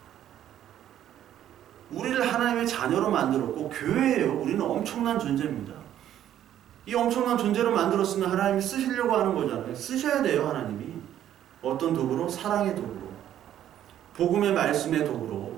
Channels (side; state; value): left; quieter; 11.2 dB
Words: 우리를 하나님의 자녀로 만들었고 교회예요. 우리는 엄청난 존재입니다. 이 엄청난 존재로 만들었으면 하나님이 쓰시려고 하는 거잖아요. 쓰셔야 돼요. 하나님이. 어떤 도구로? 사랑의 도구로. 복음의 말씀의